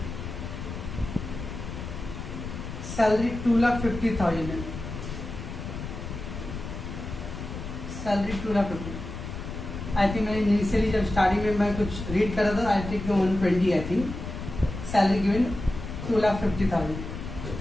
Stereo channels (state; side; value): noise; left; rumble, 8 dB below the sound